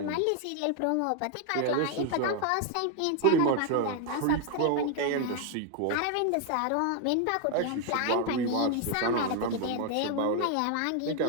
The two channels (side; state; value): both; different; correlation 0.01